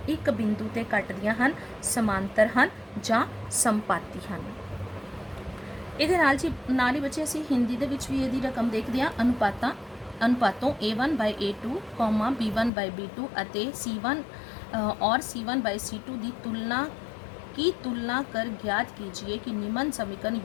एक बिंदु ते कटदियां हन, समांतर हन जां संपाती हन। इहदे नाल ही बच्चे असीं हिंदी दे विच भी इहदी रकम देखदे हां। अनुपातों A1 bye A2 comma B1 bye B2 अते C1 और C1 बाय C2 की तुलना कर ज्ञात कीजिए कि निम्न समीकरण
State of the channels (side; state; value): right; drops out; at 12.7 s